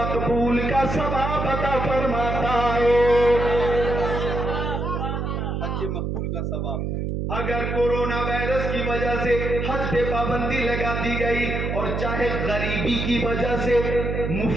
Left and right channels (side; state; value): right; noise; hum, 2 dB below the sound